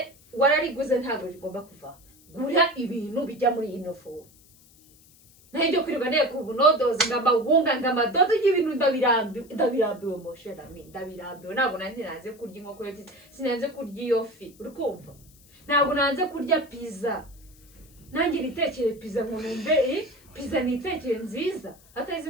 warariguze ntabwo rigomba kuva gura ibintu bijya muri ino fomu naho ibyo kwirirwa nteko ubunodozi ng'amabunga ng'amadodo y'ibintu ndabirambiwe mosherami ndabirambiwe ntabwo nanjye nanze kurya inkoko yokeje sinanze kurya iyo fi uri kumva ntabwo nanze kurya pizza nanjye nitekere pizza ngo numve pizza nitekere nziza atari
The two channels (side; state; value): left; noise; hiss, 27 dB below the sound